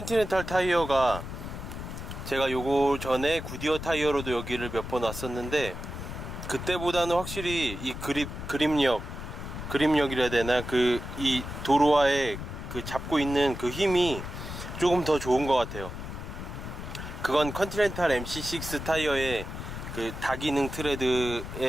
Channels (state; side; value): noise; left; rumble, 8 dB below the sound